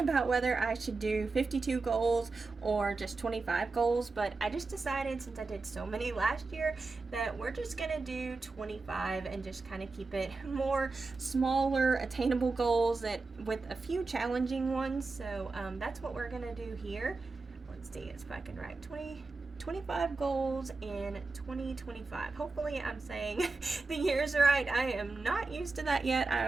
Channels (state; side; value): quieter; left; 3.8 dB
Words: about whether I should do 52 goals or just 25 goals, but I just decided, since I did so many last year, that we're just gonna do 25 and just kind of keep it more smaller, attainable goals that with a few challenging ones. So that's what we're gonna do here. Let's see if I can write 25 goals in 2025. Hopefully I'm saying the years right. I am not used to that yet. I